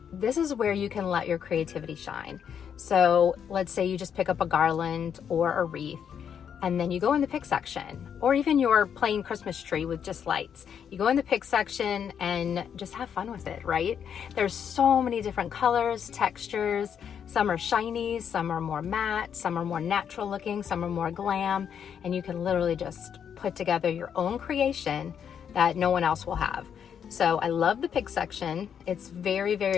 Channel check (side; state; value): right; quieter; 8.0 dB